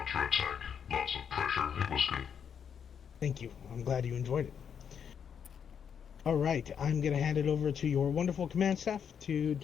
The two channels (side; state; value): right; quieter; 7.6 dB